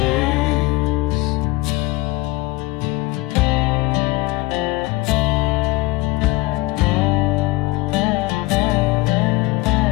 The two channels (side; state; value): right; quieter; 21.2 dB